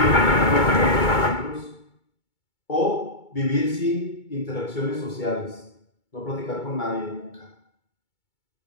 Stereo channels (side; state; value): right; late; 2.2 ms